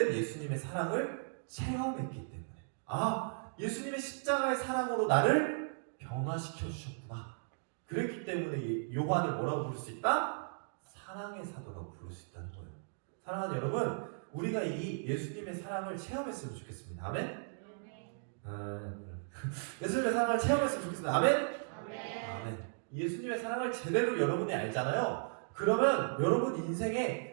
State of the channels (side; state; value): left; silent; digital silence